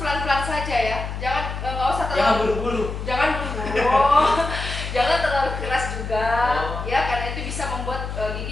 saja ya, nggak usah terlalu. Jangan buru-buru. Jangan buru-buru. Jangan terlalu keras juga, ya, karena itu bisa membuat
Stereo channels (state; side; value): noise; left; hum, 6 dB below the sound